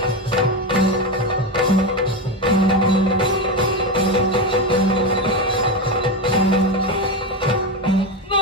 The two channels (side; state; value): both; normal; correlation 0.15